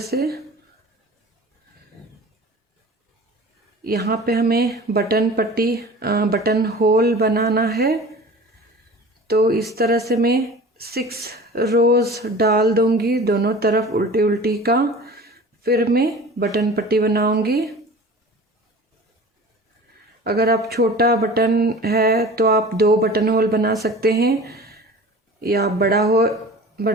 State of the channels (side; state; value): both; normal; correlation 0.40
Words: यहाँ पे हमें बटन पट्टी बटन होल बनाना है। तो इस तरह से मैं 6 रोज डाल दूंगी दोनों तरफ उल्टी उल्टी का। फिर मैं बटन पट्टी बनाऊंगी। अगर आप छोटा बटन है तो आप 2 बटन होल बना सकते हैं, या बड़ा